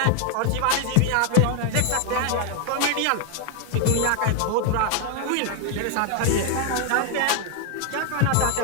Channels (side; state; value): both; different; correlation 0.01